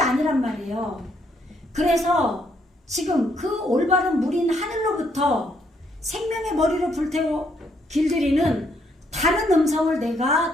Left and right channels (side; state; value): both; normal; correlation 0.72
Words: 아니란 말이에요. 그래서 지금 그 올바른 물인 하늘로부터 생명의 머리를 불태워 길들이는 다른 음성을